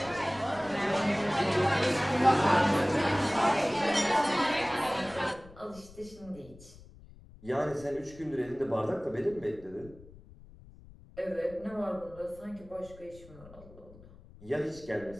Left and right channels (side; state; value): left; noise; rumble, 21 dB below the sound